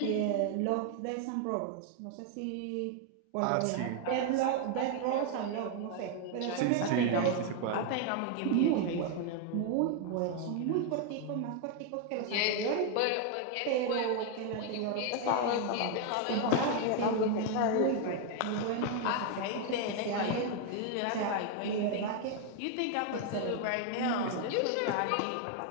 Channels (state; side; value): different; both; correlation 0.01